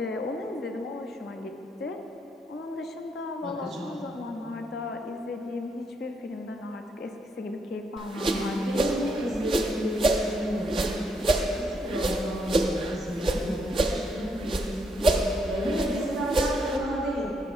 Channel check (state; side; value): normal; both; correlation 0.75